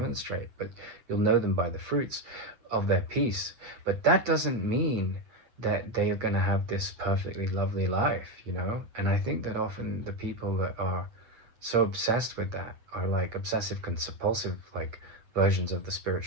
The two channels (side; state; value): left; late; 8.7 ms